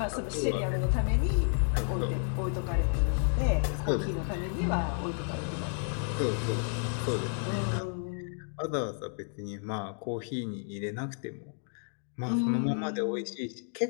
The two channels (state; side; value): silent; right; 56 dB below the other